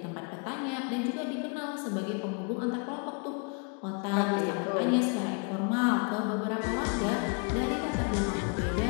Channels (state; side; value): quieter; right; 35.7 dB